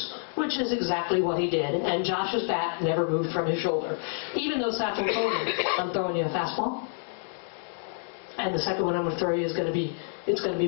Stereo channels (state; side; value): silent; right; digital silence